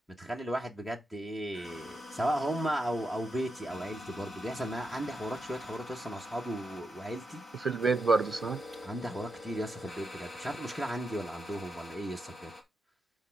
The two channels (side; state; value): both; normal; correlation 0.85